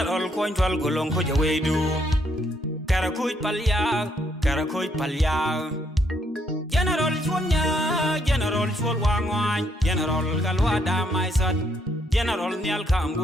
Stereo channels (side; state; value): both; normal; correlation 0.72